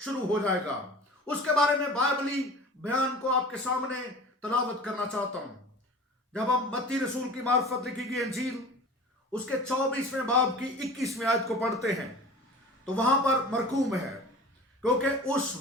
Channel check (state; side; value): normal; both; correlation 0.39